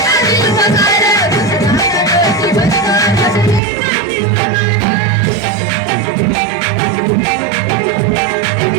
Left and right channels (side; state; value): left; drops out; at 3.6 s